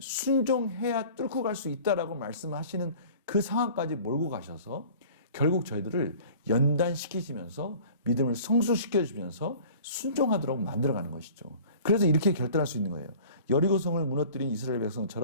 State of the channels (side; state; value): both; inverted; correlation -0.46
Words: 순종해야 뚫고 갈 수 있다라고 말씀하시는 그 상황까지 몰고 가셔서 결국 저희들을 연단시키시면서 믿음을 성숙시켜주면서 순종하도록 만들어가는 것이죠. 그래서 이렇게 결단할 수 있는 거예요. 여리고성을 무너뜨린 이스라엘